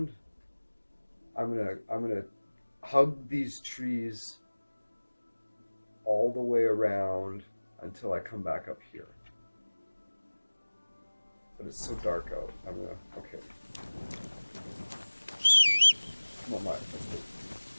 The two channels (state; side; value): inverted; both; correlation -1.00